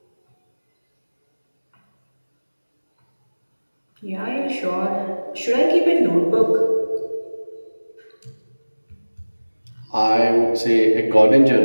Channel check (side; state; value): both; inverted; correlation -1.00